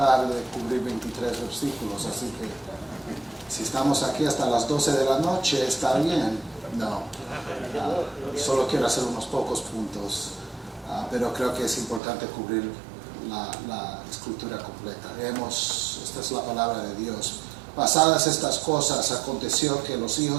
de cubrir 23 versículos. Así que si estamos aquí hasta las 12 de la noche, está bien. No, solo quiero hacer unos pocos puntos, pero creo que es importante cubrir la escritura completa. Esta es la palabra de Dios. Pasadas estas cosas, aconteció que los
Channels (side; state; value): left; drops out; at 12.0 s